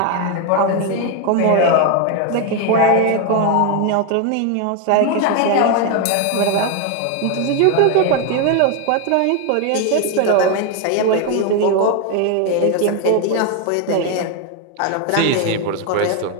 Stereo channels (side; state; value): both; different; correlation 0.01